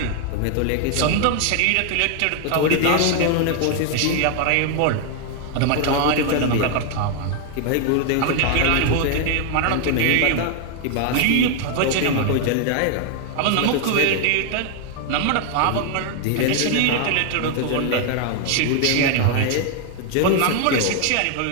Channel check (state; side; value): different; both; correlation 0.00